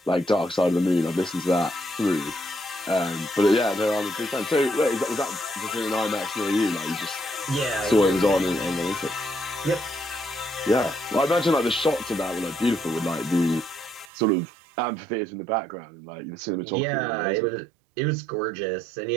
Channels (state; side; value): drops out; left; at 14.1 s